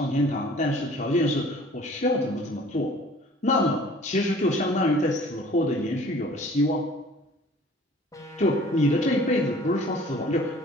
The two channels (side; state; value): both; normal; correlation 0.50